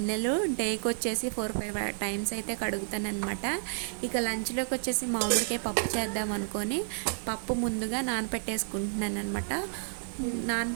డేకి వచ్చేసి 4-5 టైమ్స్ అయితే కడుగుతాను అనమాట. ఇక లంచ్లోకి వచ్చేసి మామిడికాయ పప్పు చేద్దాం అనుకొని పప్పు ముందుగా నానబెట్టేసుకుంటున్నాను అనమాట.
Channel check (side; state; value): left; silent; digital silence